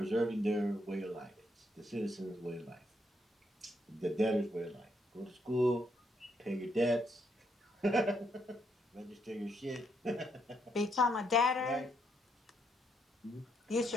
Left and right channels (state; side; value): normal; both; correlation 0.76